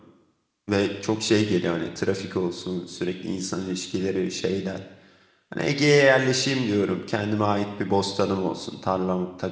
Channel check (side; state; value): both; identical; correlation 1.00